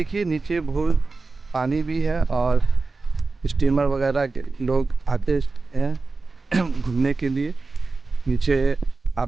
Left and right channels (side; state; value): left; quieter; 3.8 dB